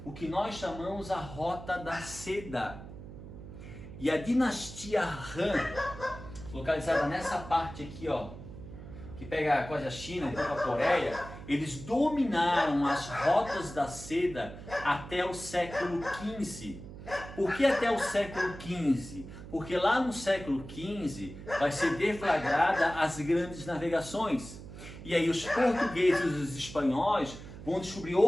o que nós chamamos a Rota da Seda. E a dinastia Han, localizada nessa parte aqui, ó, que pega quase a China, um pouco a Coreia, eles dominaram as rotas da seda até o século XV. Por que até o século XV? Porque lá no século XV vai ser deflagrada as grandes navegações. E aí os portugueses e os espanhóis vão descobrir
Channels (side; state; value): right; noise; hum, 13 dB below the sound